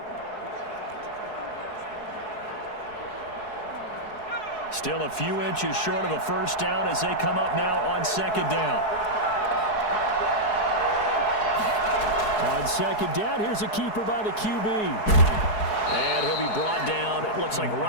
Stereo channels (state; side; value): late; right; 4.7 ms